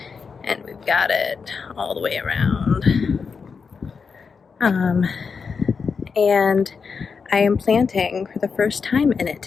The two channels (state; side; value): quieter; right; 5.5 dB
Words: and we've got it all the way around. And I am planting for the first time in it